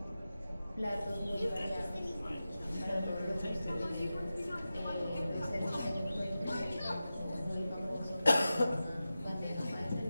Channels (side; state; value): both; inverted; correlation -0.93